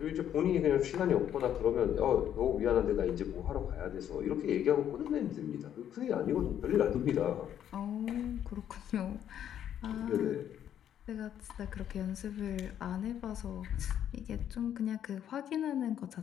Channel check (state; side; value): quieter; right; 10.0 dB